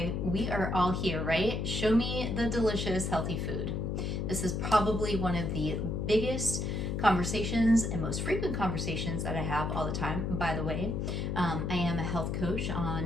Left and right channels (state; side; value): noise; left; hum, 1 dB below the sound